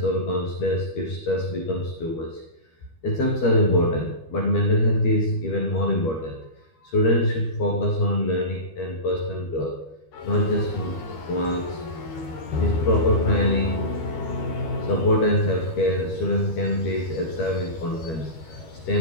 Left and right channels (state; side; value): late; right; 12 ms